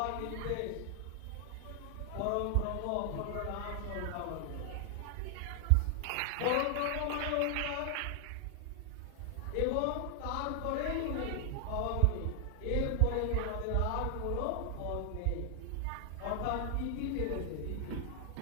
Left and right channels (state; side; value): different; both; correlation 0.00